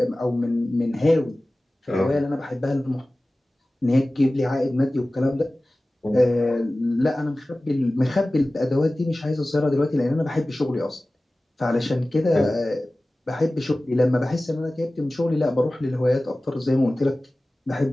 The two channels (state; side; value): normal; both; correlation 0.97